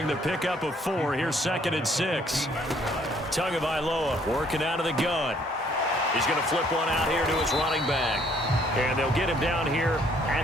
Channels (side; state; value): both; normal; correlation 0.63